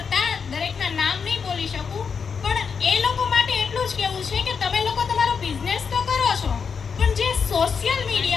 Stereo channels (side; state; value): right; quieter; 6.0 dB